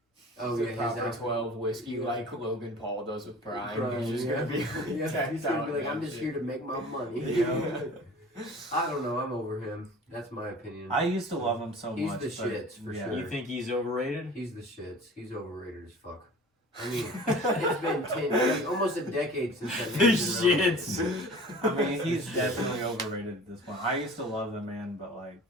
Oh the yeah, proper his 12 whiskey Yeah. like Logan Paul does with Prime. Prime, He's just yeah. gonna be Yeah, decked he's gonna out be like, in I'm that just shit. here to make my money. Yeah. I don't know. I'm over him. That's my opinion. I used to love him so He's much. the but shits, for yeah. sure. You think he's overrated? He's the shits. He's overrated as fuck. I mean, it's been 10, almost a decade since that The man's been around. shits. I mean, he's definitely overrated at this point. I used to love the man, but like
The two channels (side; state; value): both; normal; correlation 0.42